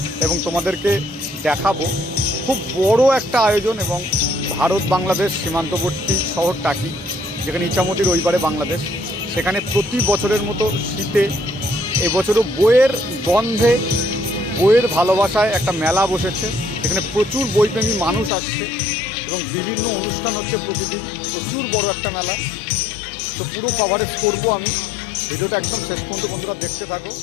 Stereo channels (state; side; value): drops out; right; at 18.3 s